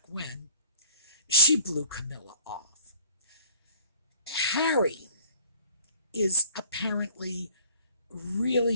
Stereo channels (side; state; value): both; inverted; correlation -0.52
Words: when, she blew Camilla off. Harry is apparently really